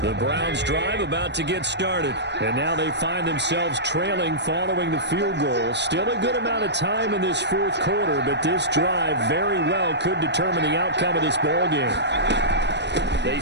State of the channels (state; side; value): late; left; 0.50 ms